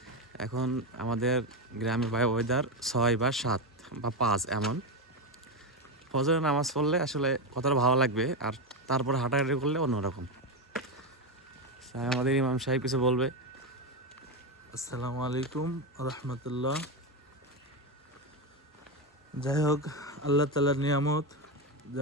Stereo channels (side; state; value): both; normal; correlation 0.11